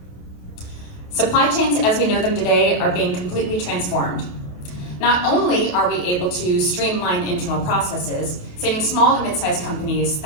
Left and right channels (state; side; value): late; right; 28 ms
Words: Supply chains as we know them today are being completely transformed. Not only are we able to streamline internal processes, saving small to mid-sized companies